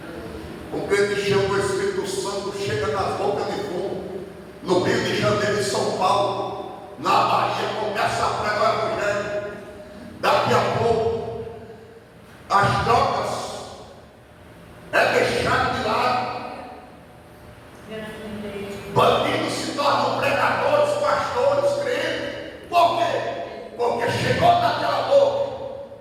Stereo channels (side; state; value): both; identical; correlation 1.00